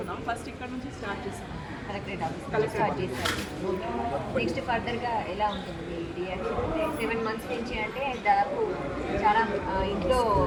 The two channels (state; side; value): identical; both; correlation 1.00